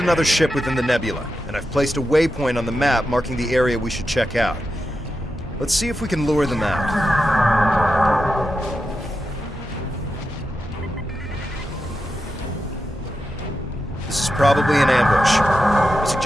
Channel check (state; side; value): normal; both; correlation 0.89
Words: ship within the nebula, and I've placed a waypoint on the map marking the area we should check out. Let's see if we can lure them out. This is probably an ambush. I